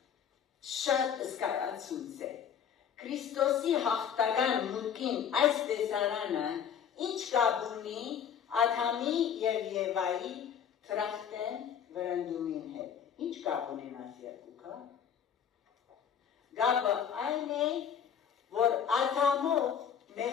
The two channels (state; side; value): quieter; right; 8.1 dB